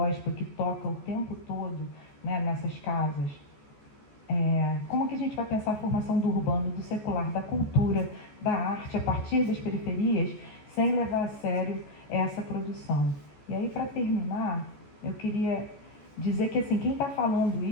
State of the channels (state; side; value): late; right; 14 ms